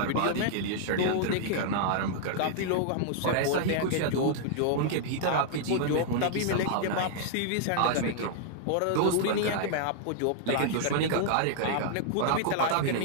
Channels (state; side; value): different; both; correlation -0.01